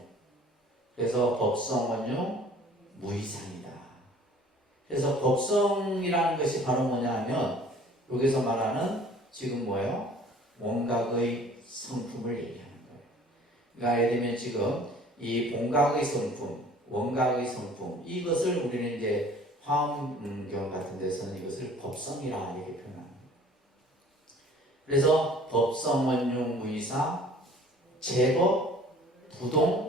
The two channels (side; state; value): both; normal; correlation 0.51